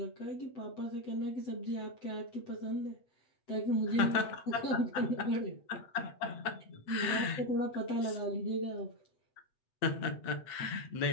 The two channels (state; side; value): late; right; 8.0 ms